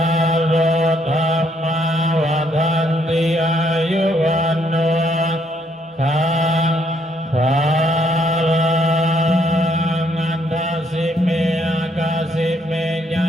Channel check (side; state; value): both; normal; correlation 0.71